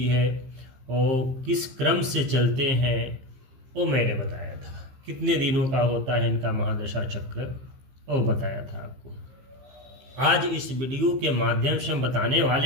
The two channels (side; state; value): left; late; 15 ms